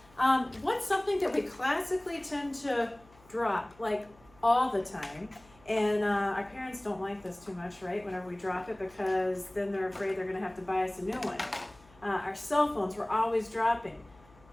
What's something that we classically tend to drop like all the time? And our parents don't like this too much, right? Whenever we drop it, because then they're afraid they're gonna have to buy us a new one. Our cell phones, we're always dropping.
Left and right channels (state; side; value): noise; left; hum, 27 dB below the sound